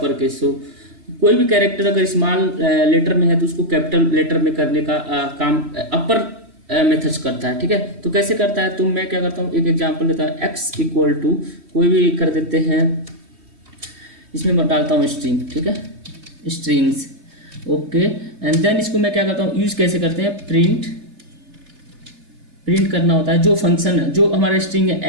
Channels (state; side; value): late; left; 3.1 ms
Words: case. So कोई भी कैरेक्टर अगर स्मॉल लेटर में है तो उसको कैपिटल लेटर में करने का काम अपर मेथड्स करता है। ठीक है, तो कैसे करता है, तो मैं क्या करता हूँ, एक एग्जांपल लेता हूँ, x इक्वल टू कोई भी कर देते हैं, इसमें मैं डालता हूँ स्ट्रिंग। ठीक है, स्ट्रिंग्स, ओके। एंड देन इसको मैं क्या करता हूँ, यूज कैसे करते हैं, प्रिंट करना होता है जो फंक्शन है, जो हमारा स्ट्रिंग